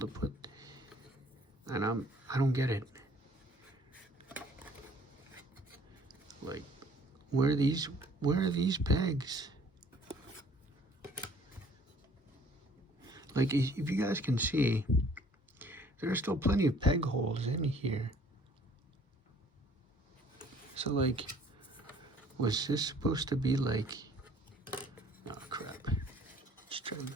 put. And I don't get it. Like, where are these pegs? Like, if you guys can see, there are still plenty of peg holes in here. So, like, was this supposed to be like, oh crap. Just trying,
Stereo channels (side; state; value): both; normal; correlation 0.56